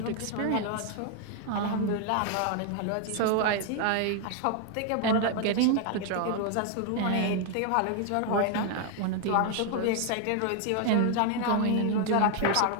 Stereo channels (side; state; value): both; different; correlation 0.00